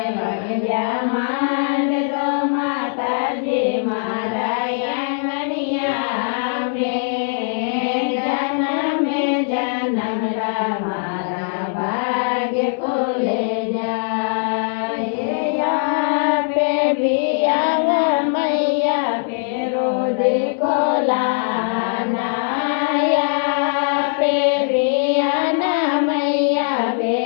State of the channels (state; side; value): silent; right; digital silence